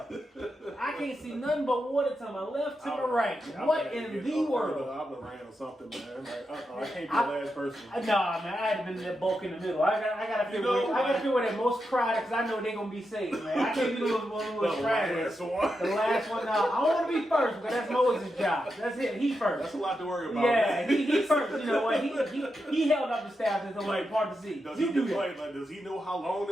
I can't see nothing but water to my left, to my right. What in the world? I would have ran or something, man. Like, I can't be the last person. Nah, man, I had been in that bulk in the middle. I gotta feel I gotta feel where that most crowded, because I know they gonna be safe, man. I can't be the one who was crowded. Last one. The last one, now I don't want to be first because that's Moses' job. That's it. He first. That's a lot to worry about. Yeah, man. he first. You know what? He held up the staff until like part to see. Does You he do do that. like, does he know how long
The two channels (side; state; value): both; normal; correlation 0.86